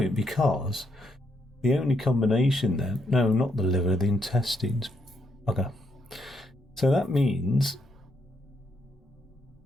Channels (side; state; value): both; normal; correlation 0.77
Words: because the only combination then... No, not the liver, the intestines. Okay. So that means